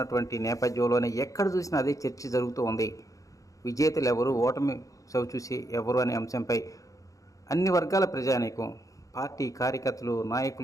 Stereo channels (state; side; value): late; right; 0.16 ms